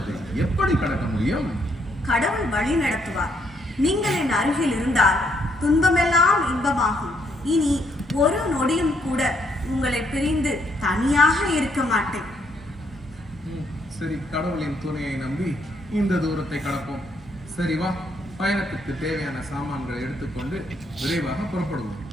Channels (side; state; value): both; normal; correlation 0.72